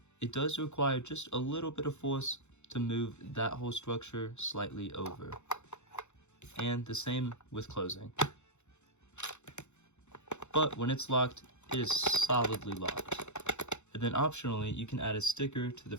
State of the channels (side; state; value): right; late; 0.83 ms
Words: It does require just a little bit of force to move that whole structure slightly over. And the same with closing. But when it's locked, it is solidly locked. And then optionally, you can add a sticker to the